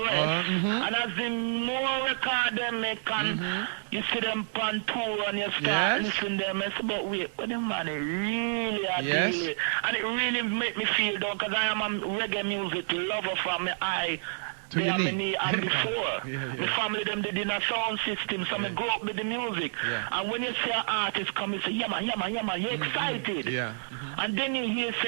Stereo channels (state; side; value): silent; left; digital silence